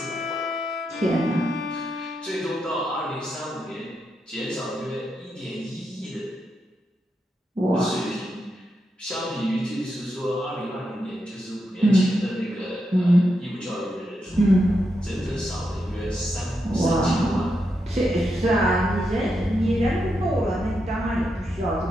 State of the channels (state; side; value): normal; both; correlation 0.84